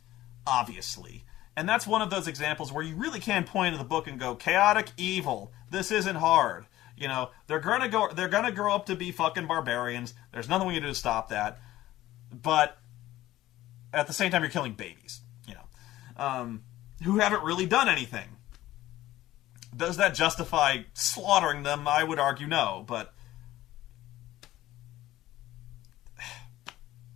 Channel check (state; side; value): quieter; right; 15.4 dB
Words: obviously. And that's one of those examples where you really can point to the book and go, chaotic evil. This isn't hard. They're gonna grow up to be fucking barbarians. There's nothing we can do to stop that. But at the same time, you're killing babies, who haven't really done anything. Does that justify slaughtering them? I would argue no, but